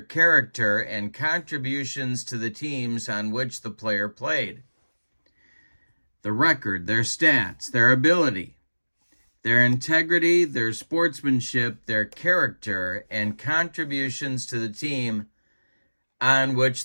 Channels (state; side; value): inverted; both; correlation -1.00